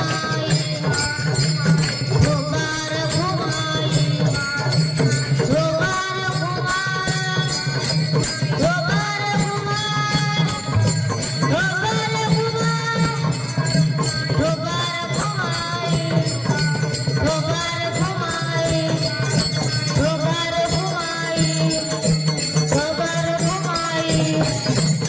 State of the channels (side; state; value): both; identical; correlation 1.00